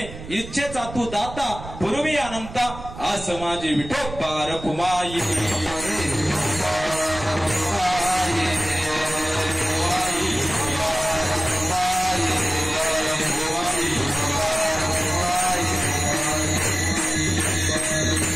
इच्छेचा तू दाता पूर्वी अनंता आस माझी विठोबा रखुमाई.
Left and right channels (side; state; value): right; noise; rumble, 12 dB below the sound